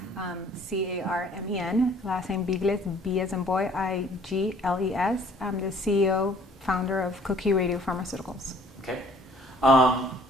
C-A-R-M-E-N, last name Bigles, B as in boy, I-G-L-E-S. I'm the CEO, founder of Coqui Radiopharmaceuticals. Okay.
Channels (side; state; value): both; normal; correlation 0.57